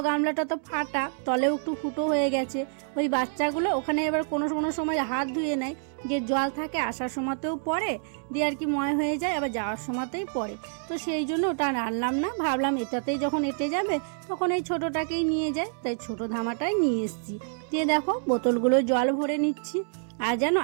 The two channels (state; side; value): silent; left; digital silence